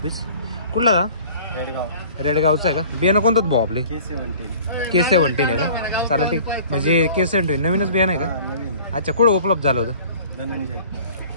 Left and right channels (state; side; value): inverted; both; correlation -0.48